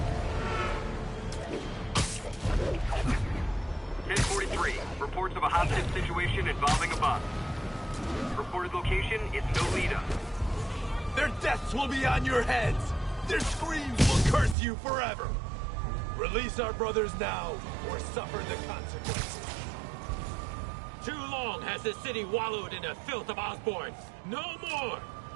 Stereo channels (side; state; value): left; drops out; at 14.6 s